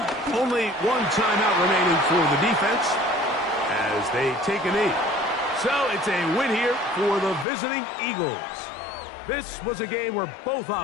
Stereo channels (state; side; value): drops out; right; at 7.5 s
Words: Only one timeout remaining for the defense as they take a knee. So it's a win here for the visiting Eagles. This was a game where both